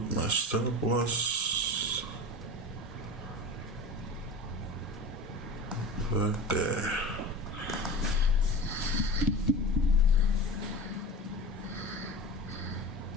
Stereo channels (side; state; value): both; normal; correlation 0.32